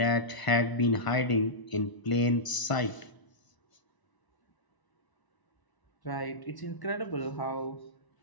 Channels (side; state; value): right; late; 1.0 ms